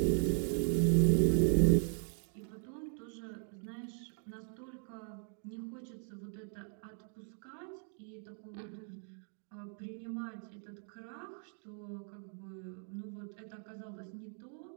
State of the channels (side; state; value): left; silent; 52 dB below the other